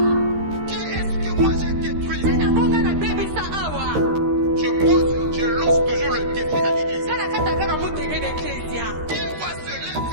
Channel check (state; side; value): late; left; 13 ms